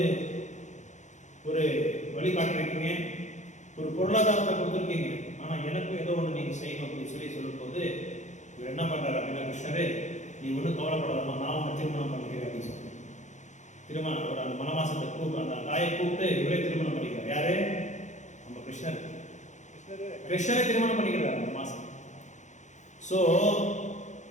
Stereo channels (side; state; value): right; late; 0.35 ms